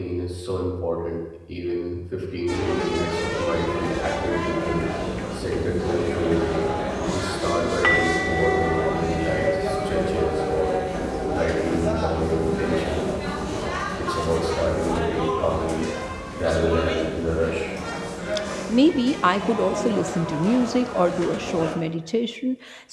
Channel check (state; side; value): identical; both; correlation 1.00